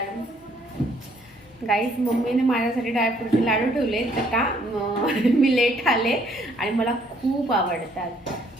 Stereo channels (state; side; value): normal; both; correlation 0.65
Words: गाईज मम्मीने माझ्यासाठी ड्रायफ्रूटचे लाडू ठेवले तर का मी लेट आले आणि मला खूप आवडतात.